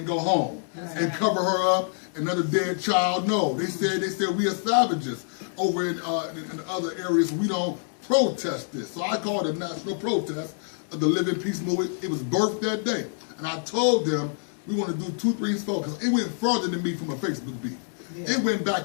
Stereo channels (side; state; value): right; silent; digital silence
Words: go home and cover her up, another dead child. No, they said we are savages over in other areas. We don't protest this. So I called it a national protest of the Living Peace Movement. It was birthed that day. And I told them we want to do 2, 3, 4 because it went further than me from a Facebook beef. Yeah. It went